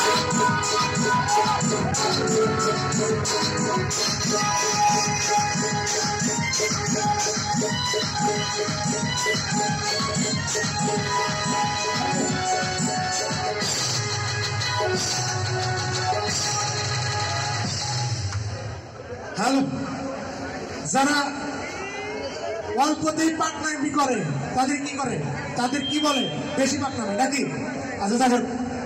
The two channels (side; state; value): both; identical; correlation 1.00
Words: যারা অল্পতেই পাকনামি করে তাদের কি করে, তাদের কি বলে? বেশি পাকনামি নাকি? আচ্ছা দেখেন,